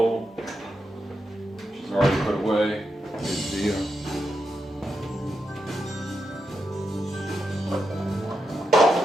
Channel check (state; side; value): normal; both; correlation 0.85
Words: which is already put away. Good deal.